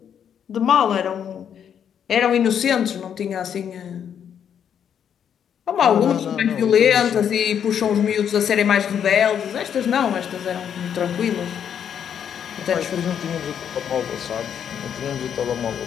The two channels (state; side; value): quieter; right; 8.5 dB